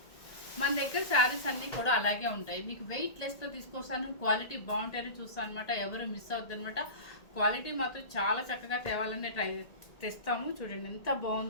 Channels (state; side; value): late; right; 1.8 ms